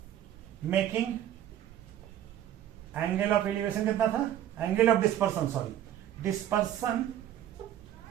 making angle of elevation कितना था, angle of dispersion, sorry dispersion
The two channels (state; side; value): quieter; left; 11.4 dB